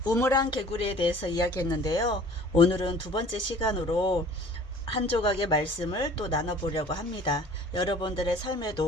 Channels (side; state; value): both; normal; correlation 0.49